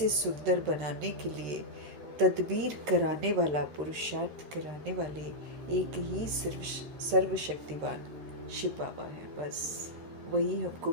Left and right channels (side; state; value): left; late; 13 ms